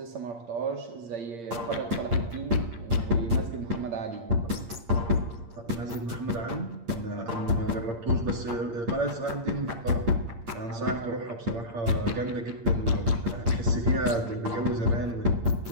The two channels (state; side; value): late; left; 8.6 ms